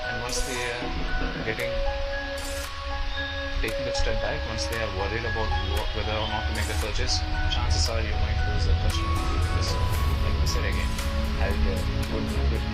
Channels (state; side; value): identical; both; correlation 1.00